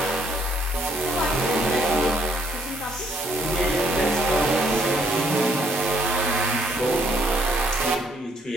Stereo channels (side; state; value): both; normal; correlation 0.67